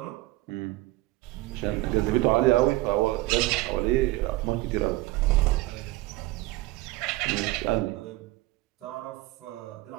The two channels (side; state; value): left; quieter; 18.9 dB